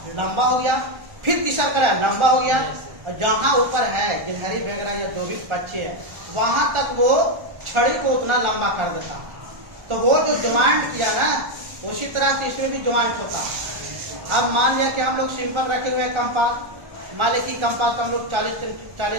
लंबा हो गया, फिर तीसरा कराया, लंबा हो गया, और जहां ऊपर है गिलहरी वगैरह या जो भी पक्षी है वहां तक वो छड़ी को उतना लंबा कर देता। तो वो जो ज्वाइंट किया ना उसी तरह से इसमें भी ज्वाइंट होता है। अब मान लिया कि हम लोग सिंपल रखे हुए कंपास, मान लिया कि कंपास हम लोग 40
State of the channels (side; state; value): left; late; 1.4 ms